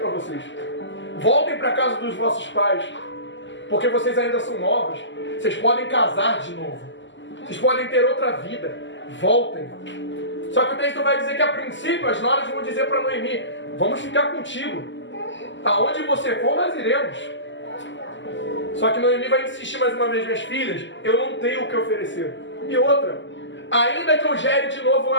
vocês. Voltem para a casa dos vossos pais, porque vocês ainda são novas. Vocês podem casar de novo. Vocês podem ter outra vida. Voltem. Só que o texto vai dizer que a princípio as noras vão dizer para Noemi: vamos ficar contigo. Aonde você for, nós iremos. Só que Noemi vai insistir mais uma vez: minhas filhas, eu não tenho o que oferecer. E outra, ainda que eu gere de novo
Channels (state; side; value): late; right; 0.54 ms